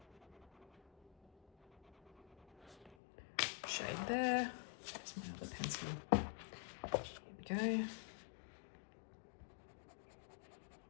Shade there. There's my other pencil. Here we go.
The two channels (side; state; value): right; drops out; at 3.0 s